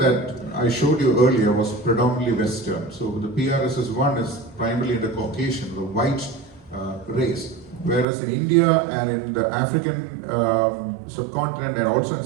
I showed you earlier was predominantly Western. So the PRSS1 is primarily in the Caucasian, the white race. Whereas in India and in the African subcontinent and also in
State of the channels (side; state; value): left; drops out; at 8.1 s